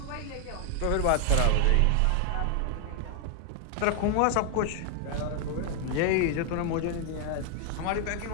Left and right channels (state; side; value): different; both; correlation 0.00